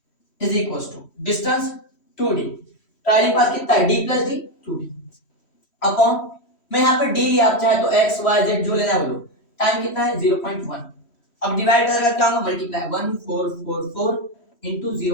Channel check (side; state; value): right; late; 3.1 ms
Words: is equal to distance 2d, travelling path कितना है, d plus D, 2d, upon, मैं यहाँ पर d लिया, आप चाहे तो x y z जो लेना है बोलो, टाइम कितना है 0.1, अब डिवाइड करेगा क्या होगा, multiply 1444 into